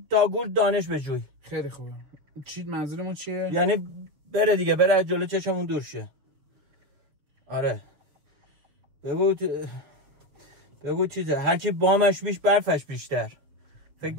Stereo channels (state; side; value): late; left; 6.9 ms